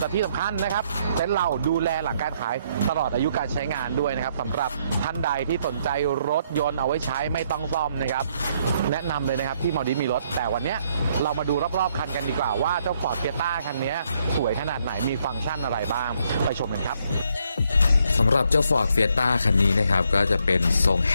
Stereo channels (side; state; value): both; inverted; correlation -0.72